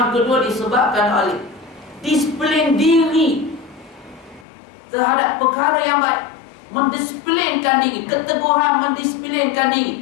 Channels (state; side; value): drops out; right; at 4.5 s